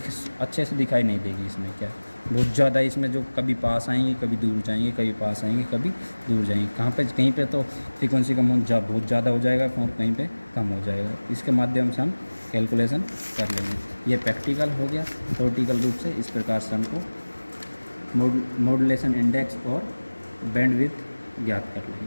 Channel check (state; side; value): inverted; both; correlation -1.00